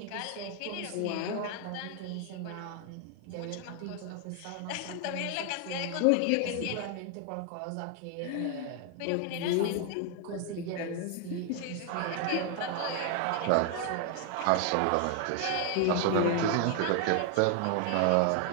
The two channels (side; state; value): both; different; correlation 0.00